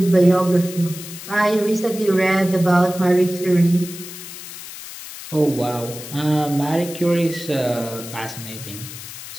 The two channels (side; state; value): left; noise; hiss, 12 dB below the sound